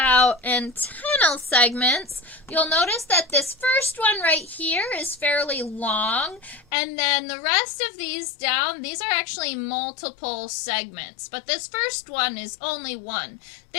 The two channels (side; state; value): right; drops out; at 6.7 s